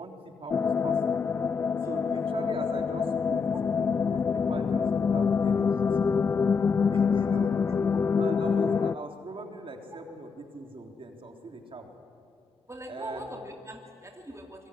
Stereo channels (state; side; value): quieter; right; 5.2 dB